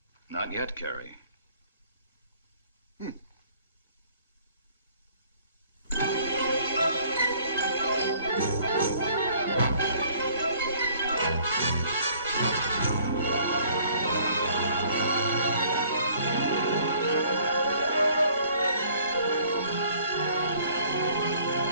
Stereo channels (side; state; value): both; inverted; correlation -0.58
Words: Not yet, Carrie.